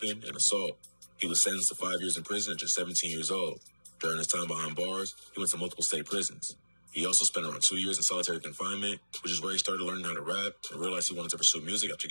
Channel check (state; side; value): inverted; both; correlation -1.00